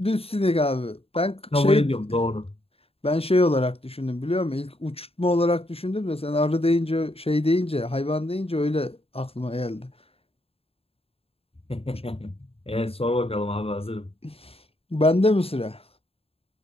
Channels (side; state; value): right; late; 0.28 ms